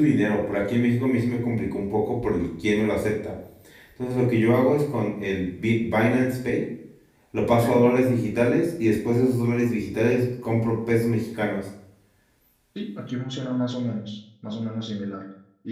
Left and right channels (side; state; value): both; identical; correlation 1.00